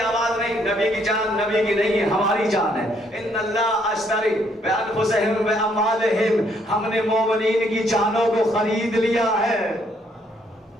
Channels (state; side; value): normal; both; correlation 0.69